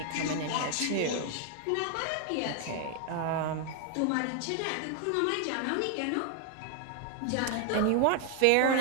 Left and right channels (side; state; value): both; different; correlation 0.00